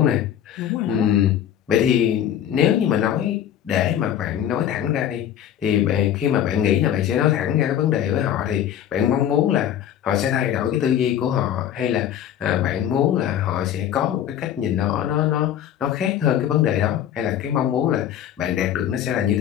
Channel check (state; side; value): quieter; right; 10.2 dB